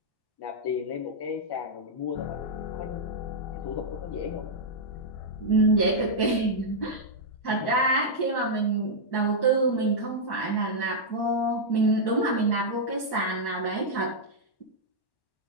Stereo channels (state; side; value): late; right; 1.1 ms